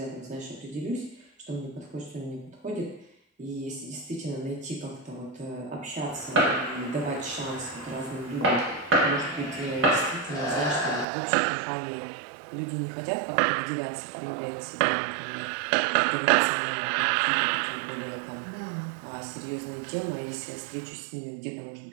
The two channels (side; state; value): left; drops out; at 11.1 s